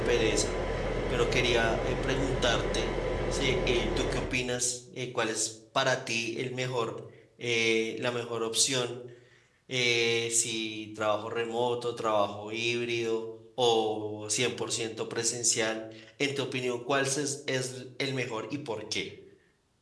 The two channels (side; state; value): both; identical; correlation 1.00